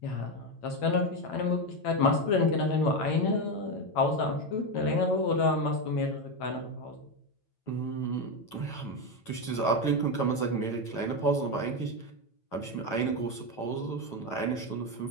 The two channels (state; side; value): late; right; 9.0 ms